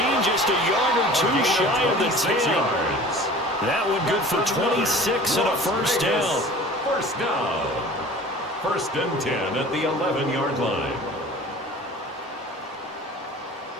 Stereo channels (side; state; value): both; normal; correlation 0.43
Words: just a yard or two shy of the 10. That one good for 26 and a first down. First down. First and 10 at the 11-yard line.